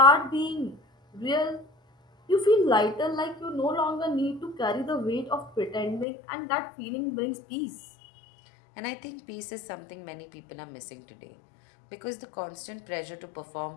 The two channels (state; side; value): drops out; right; at 6.1 s